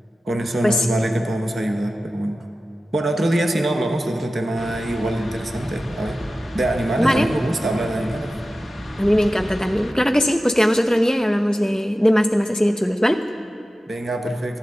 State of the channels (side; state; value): both; normal; correlation 0.94